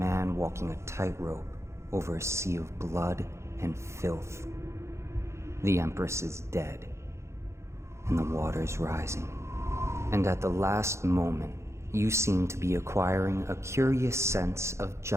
walking a tightrope over a sea of blood and filth. The Empress is dead, and the water's rising. And at the last moment, you seem to be acquiring a curious sense of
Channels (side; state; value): left; late; 0.13 ms